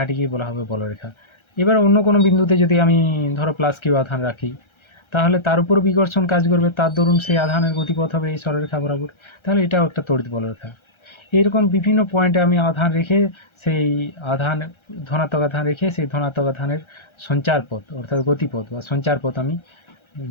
বলা হবে বলরেখা। এবার অন্য কোনো বিন্দুতে যদি আমি ধরো +q আধান রাখি, তাহলে তার উপর বিকর্ষণ কাজ করবে, তার দরুন সেই আধানের গতিপথ হবে এই সরলরেখা বরাবর, তাহলে এটাও একটা তড়িৎ বলরেখা। এইরকম বিভিন্ন পয়েন্টে আমি আধান রেখে সেই আধান, ধনাত্মক আধান রেখে সেই ধনাত্মক আধানের সঞ্চার পথ অর্থাৎ গতিপথ বা সঞ্চার পথ আমি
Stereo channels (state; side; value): late; right; 1.3 ms